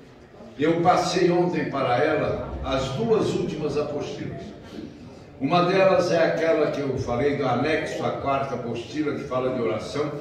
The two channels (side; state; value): both; identical; correlation 1.00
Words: Eu passei ontem para ela as duas últimas apostilas. Uma delas é aquela que eu falei do anexo à quarta apostila, que fala de oração,